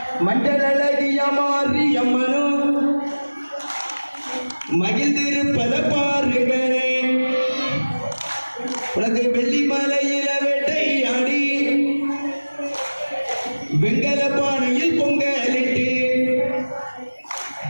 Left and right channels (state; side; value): inverted; both; correlation -1.00